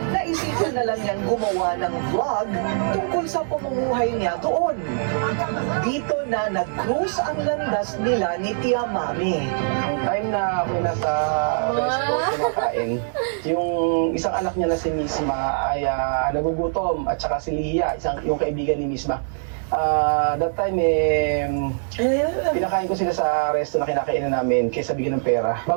naisipan na lang niyang gumawa ng vlog tungkol sa pamumuhay niya doon. Dito na nag-cruise ang landas nila ni Tia Mame. Ang time na ako nasa restaurant kumakain, yung isang anak niya na si Misma ay nagugutom at saka si Lia, yung kaibigan ni Misma. That time, pinakain ko sila sa resto na kinakainan namin kaysa bigyan ng pera.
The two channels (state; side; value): silent; left; digital silence